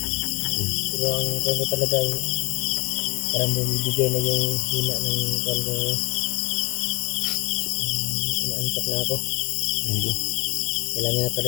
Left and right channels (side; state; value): right; quieter; 24.4 dB